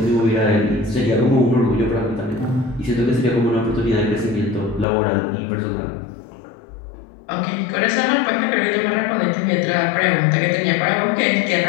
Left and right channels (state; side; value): drops out; right; at 4.9 s